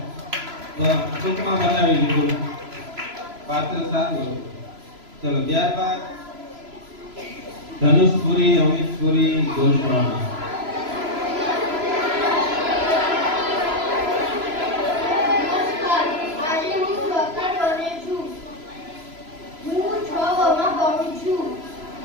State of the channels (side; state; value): left; late; 3.0 ms